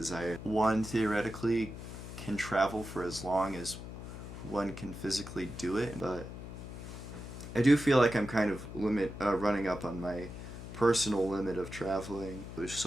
One theoretically can travel for as long as one can physically do it, but I do feel like I'm kind of running up on my personal limit of traveling. There's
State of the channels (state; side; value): noise; left; hum, 10 dB below the sound